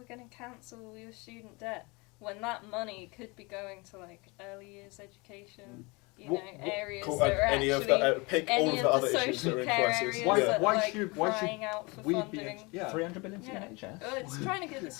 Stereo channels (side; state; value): right; quieter; 26.9 dB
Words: going to cancel your student debt, when that money could be going to like early years education, What- areas Cool, that are any actually of the pick all any of of the other the issues that social are in care crisis. areas Why- Yeah. that why are like should crying out for we funding. be? Yeah. 300 billion to Yeah. NHS. Well, it's trying to get the